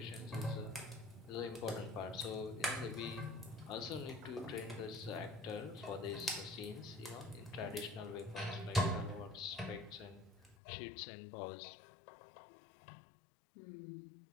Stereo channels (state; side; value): drops out; right; at 10.6 s